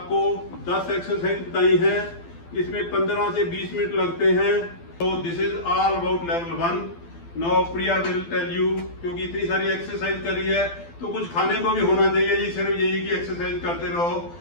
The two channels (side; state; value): right; late; 12 ms